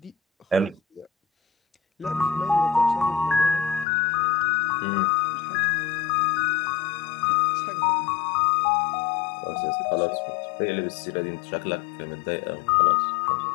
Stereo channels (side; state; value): right; drops out; at 3.9 s